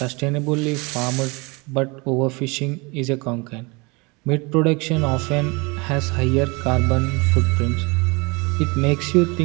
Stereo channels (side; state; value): left; quieter; 27.3 dB